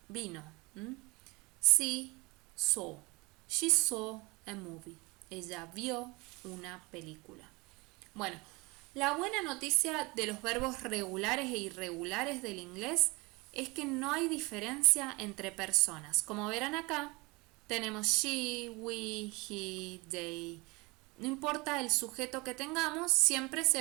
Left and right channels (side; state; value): left; quieter; 25.4 dB